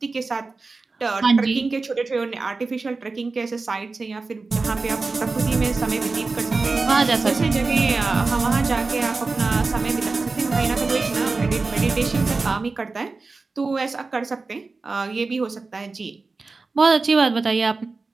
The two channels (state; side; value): quieter; left; 3.9 dB